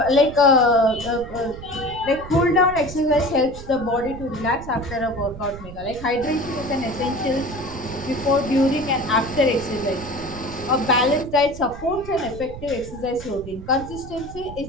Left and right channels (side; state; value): right; noise; rumble, 13 dB below the sound